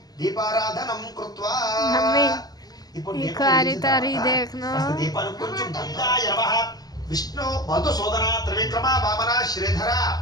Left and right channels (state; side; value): late; right; 0.19 ms